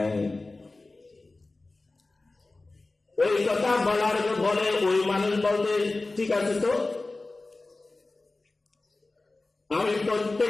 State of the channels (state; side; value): quieter; right; 3.2 dB